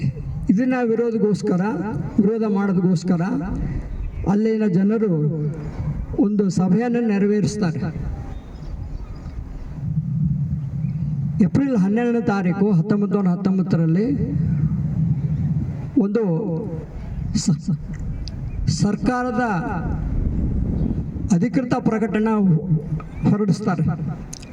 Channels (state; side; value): identical; both; correlation 1.00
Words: ಇದನ್ನ ವಿರೋಧ ಮಾಡೋದಕ್ಕೋಸ್ಕರ ಅಲ್ಲಿನ ಜನರು ಒಂದು ಸಭೆಯನ್ನು ನೆರವೇರಿಸ್ತಾರೆ. ಏಪ್ರಿಲ್ 12ನೇ ತಾರೀಕು 1919ರಲ್ಲಿ ಒಂದು ಸರ್ಕಾರದ ಅಧಿಕೃತ ಪ್ರಕಟಣೆ ಹೊರಡಿಸ್ತಾರೆ.